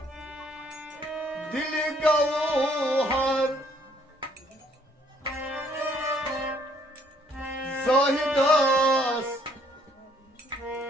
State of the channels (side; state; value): both; normal; correlation 0.65